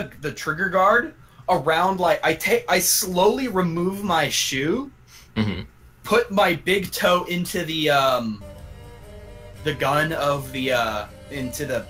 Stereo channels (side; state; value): both; identical; correlation 1.00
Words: trigger guard around, like I slowly remove my shoe, put my big toe into the gun of the into the,